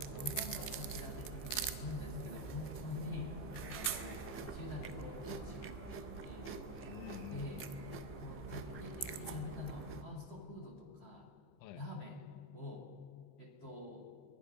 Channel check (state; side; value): late; right; 15 ms